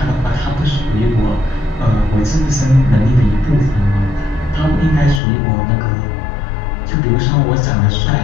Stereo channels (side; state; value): right; drops out; at 5.2 s